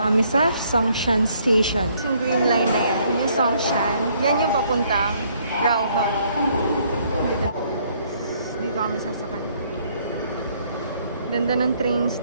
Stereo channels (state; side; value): inverted; both; correlation -0.66